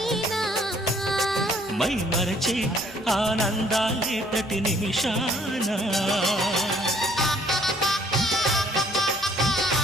మై మరచే ఆనందాలే ప్రతి నిమిషాన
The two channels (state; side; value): normal; both; correlation 0.61